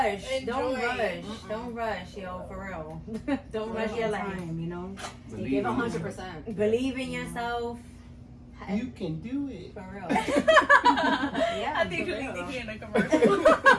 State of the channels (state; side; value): identical; both; correlation 1.00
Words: Don't Enjoy. rush. Don't rush, yo, for real. Don't rush your life. Time, you know. Believe Give in 100%. Believe in yourself. You can do it. For real. I Yeah. think for you need real. to hear in a commercial.